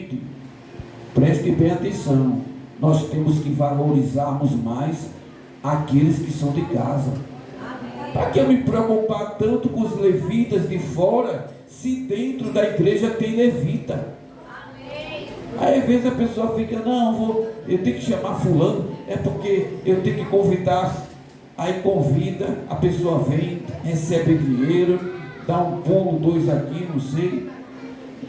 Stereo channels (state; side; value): identical; both; correlation 1.00